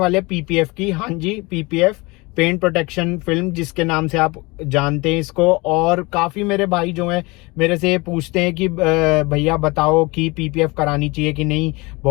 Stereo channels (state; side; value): quieter; right; 24.8 dB